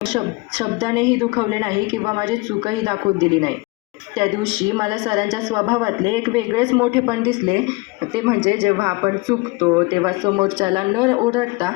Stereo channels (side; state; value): right; quieter; 24.6 dB